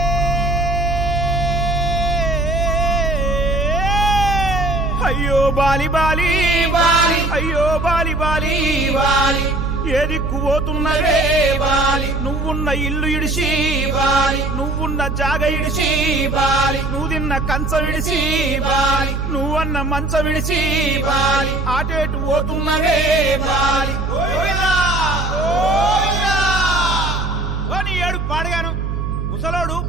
అయ్యో Bali Bali Bali అయ్యో Bali Bali Bali ఏ దిక్కు పోతున్నవే బాలి నువ్వున్న ఇల్లు ఇడిసి బాలి నువ్వున్న జాగ ఇడిసి బాలి నువ్వు తిన్న కంచం ఇడిసి బాలి నువ్వన్న మంచం ఇడిసి బాలి ఆటేటు పోతున్నవే బాలి ఏడు పాడగాను ముసలోడు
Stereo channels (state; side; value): noise; right; hum, 3 dB below the sound